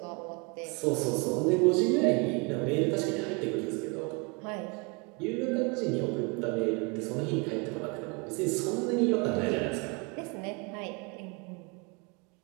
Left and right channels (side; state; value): left; quieter; 30.4 dB